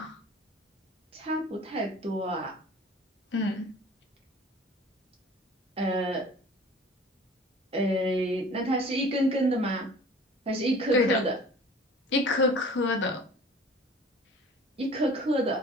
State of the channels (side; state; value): both; normal; correlation 0.46